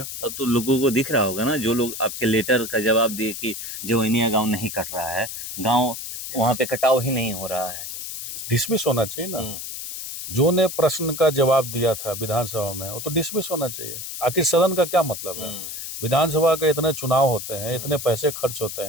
अब तो लोगों को दिख रहा होगा ना, जो लोग आपके लेटर का जवाब दिए कि जवैनिया गांव नहीं कट रहा है, गांव वहां पे कटाव ही नहीं हो रहा है, डिसमिस होना चाहिए ना। जो ने प्रश्न का जवाब दिया था विधानसभा में, वो तो डिसमिस होना चाहिए। आखिर सदन का क्या मतलब है? विधानसभा के इतने चुनाव होते हैं, इतने पैसे खर्च होते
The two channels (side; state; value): left; noise; hiss, 8 dB below the sound